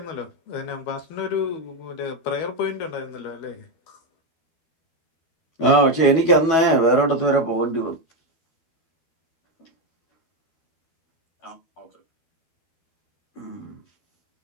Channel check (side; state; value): right; late; 12 ms